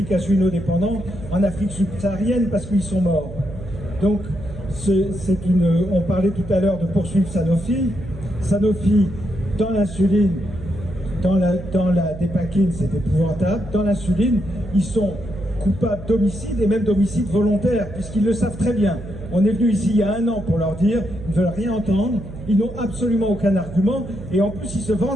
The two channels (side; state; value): right; noise; hum, 12 dB below the sound